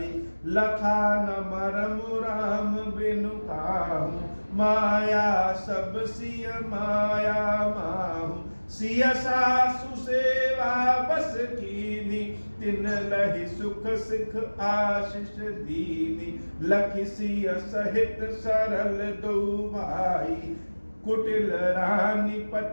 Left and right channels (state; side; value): inverted; both; correlation -1.00